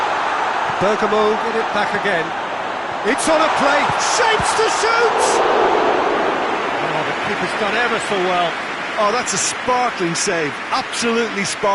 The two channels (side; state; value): both; identical; correlation 1.00